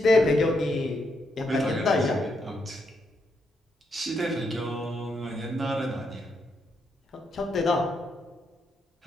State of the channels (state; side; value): normal; both; correlation 0.79